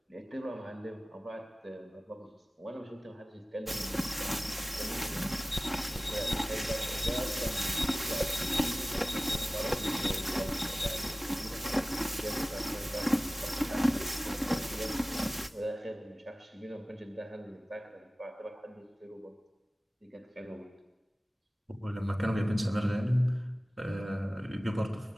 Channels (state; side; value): normal; both; correlation 0.96